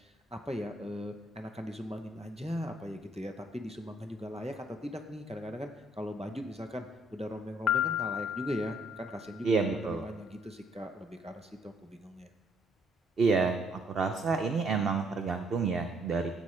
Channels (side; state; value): both; normal; correlation 0.67